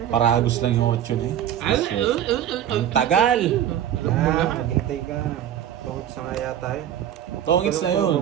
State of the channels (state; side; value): quieter; left; 10.7 dB